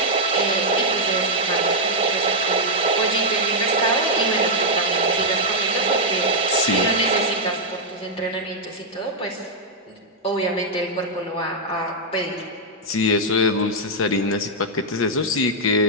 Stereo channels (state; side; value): normal; both; correlation -0.04